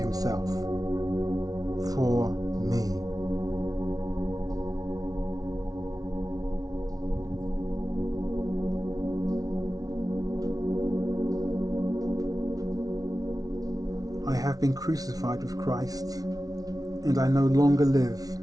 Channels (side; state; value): left; late; 0.18 ms